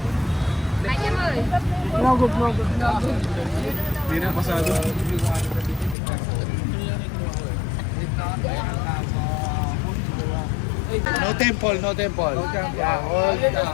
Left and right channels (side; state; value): right; drops out; at 6.0 s